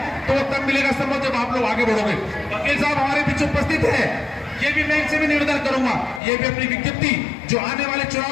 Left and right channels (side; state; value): right; drops out; at 6.2 s